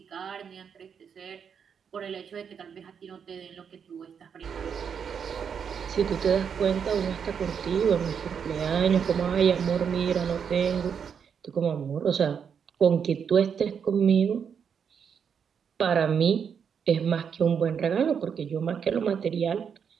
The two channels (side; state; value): left; quieter; 7.1 dB